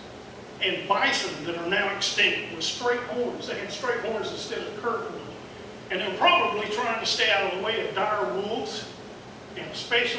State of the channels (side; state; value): both; identical; correlation 1.00